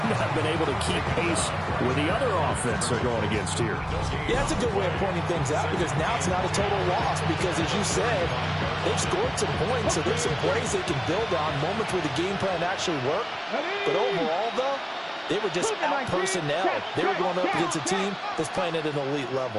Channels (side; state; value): both; identical; correlation 1.00